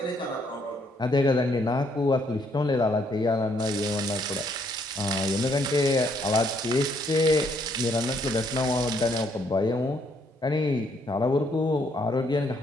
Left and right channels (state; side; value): normal; both; correlation 0.70